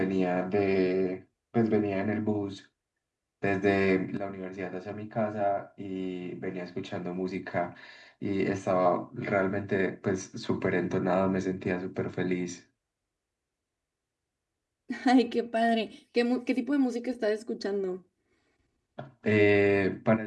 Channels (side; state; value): both; identical; correlation 1.00